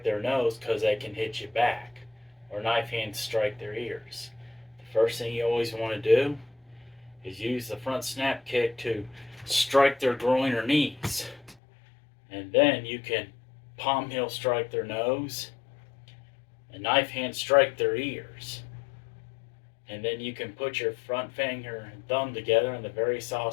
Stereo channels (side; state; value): right; drops out; at 11.6 s